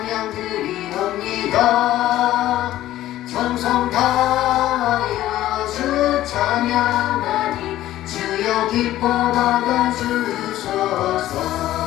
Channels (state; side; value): quieter; right; 14.2 dB